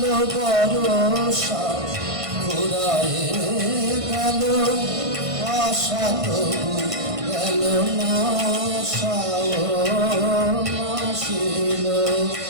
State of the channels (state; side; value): late; left; 1.5 ms